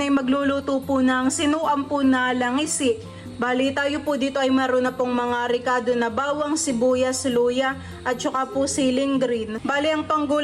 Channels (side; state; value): both; identical; correlation 1.00